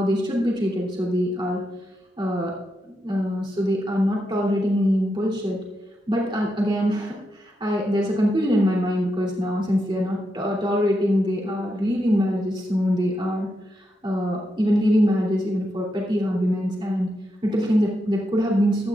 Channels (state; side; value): normal; both; correlation 0.84